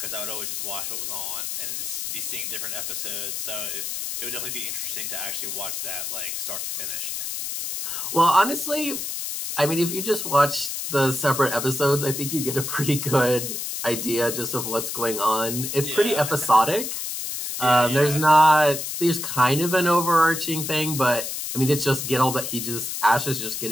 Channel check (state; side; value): noise; left; hiss, 4 dB below the sound